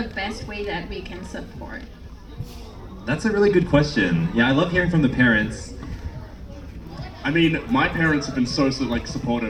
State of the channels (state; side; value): identical; both; correlation 1.00